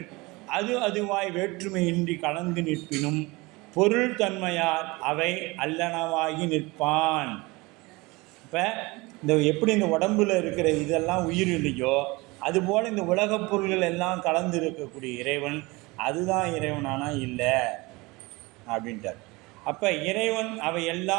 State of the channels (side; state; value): left; quieter; 23.7 dB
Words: அது அதுவாய் வேற்றுமையின்றி கலந்து நிற்பினும் பொருள் தன்மையால் அவை அல்லனவாகி நிற்பான். இப்போ இந்த எப்படி இந்த உடம்பில் இருக்கிற இதெல்லாம் உயிர் இல்லையோ, அதுபோல் இந்த உலகப் பொருள்கள் எல்லாம் கலந்து இருக்கக்கூடிய இறைவன் அதுதான் இறைவனானா இல்லை அப்படின்ட்டார். அப்போ இறைவன் அவை